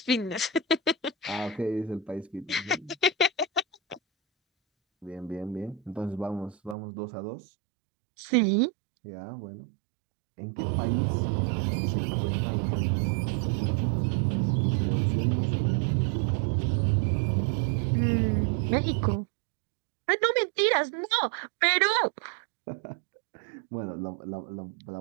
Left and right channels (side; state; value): left; drops out; at 6.8 s